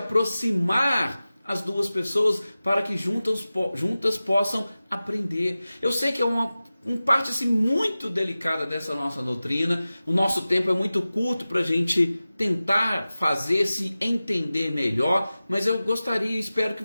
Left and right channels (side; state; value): both; inverted; correlation -0.96